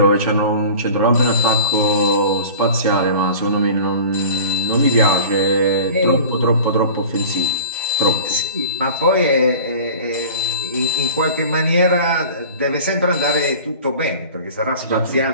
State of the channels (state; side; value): inverted; both; correlation -0.40